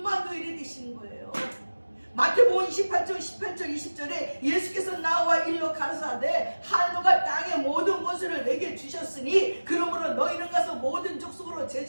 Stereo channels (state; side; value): inverted; both; correlation -1.00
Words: 되시는 거예요. 마태복음 28장 18절 20절에 예수께서 나와 일러 가라사대 하늘과 땅의 모든 것을 내게 주셨으니 그러므로 너희는 가서 모든 족속으로